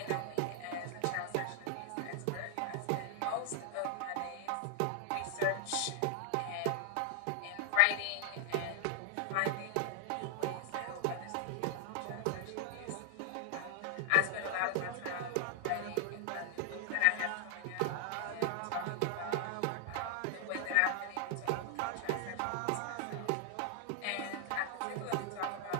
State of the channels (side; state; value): both; different; correlation 0.00